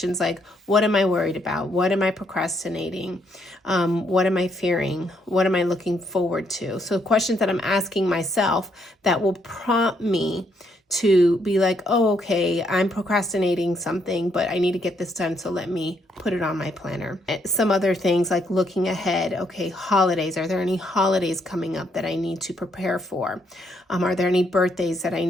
like, what am I worried about? What am I procrastinating? What am I fearing? What am I looking forward to? So questions that I'm asking myself that will prompt me to be like, oh, okay, I'm procrastinating something, but I need to get this done. So let me put it on my planner. Some other things like looking ahead. Okay, holidays. Are there any holidays coming up that I need to prepare for? Are there any birthdays that I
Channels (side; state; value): both; normal; correlation 0.73